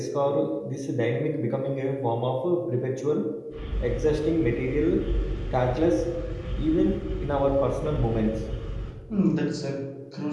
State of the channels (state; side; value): identical; both; correlation 1.00